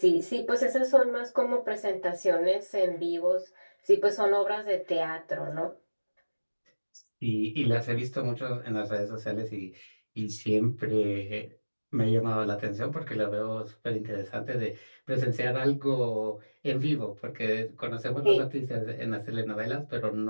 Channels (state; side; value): inverted; both; correlation -1.00